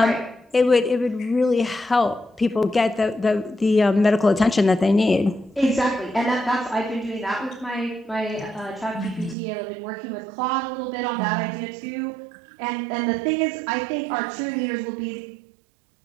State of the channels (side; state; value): left; drops out; at 9.3 s